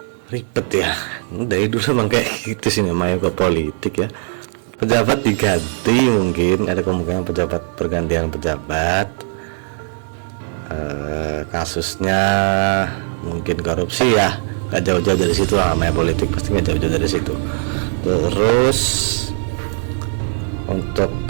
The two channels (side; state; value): left; silent; 62 dB below the other